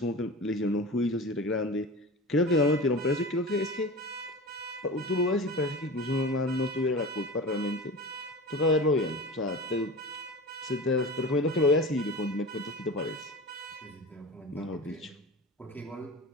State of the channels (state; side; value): normal; both; correlation 0.32